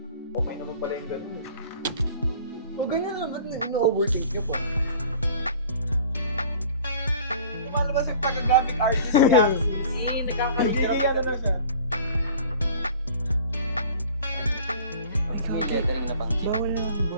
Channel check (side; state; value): both; inverted; correlation -0.46